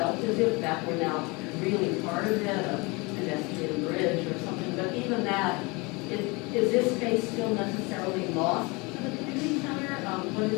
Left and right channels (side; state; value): right; quieter; 26.7 dB